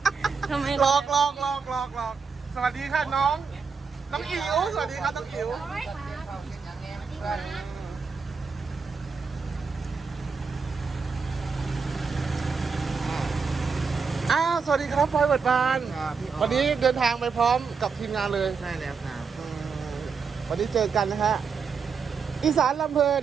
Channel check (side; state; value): left; quieter; 5.4 dB